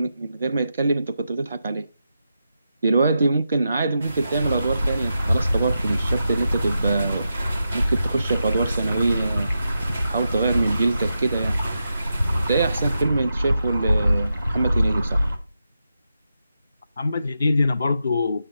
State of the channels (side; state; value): both; inverted; correlation -0.87